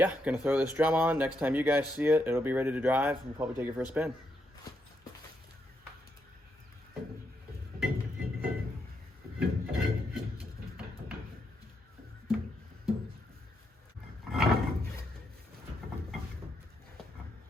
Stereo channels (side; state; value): both; normal; correlation 0.80